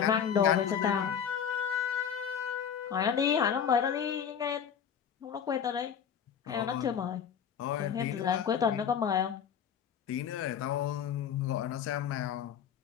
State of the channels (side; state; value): right; quieter; 8.1 dB